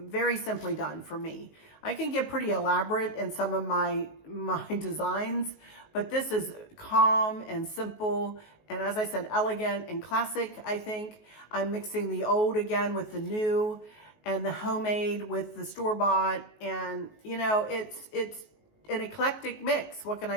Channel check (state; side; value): late; right; 19 ms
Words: simply done for me. I can get pretty elaborate in some of my designs, but this is calm and simple. And as I said, elegant and classic, I think. I'm mixing the old again with the new, and the homemade with the store-bought. And, you know, it's an eclectic mix. What can